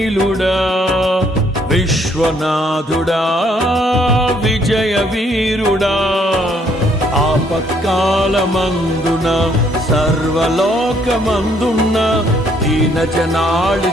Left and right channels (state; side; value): normal; both; correlation 0.67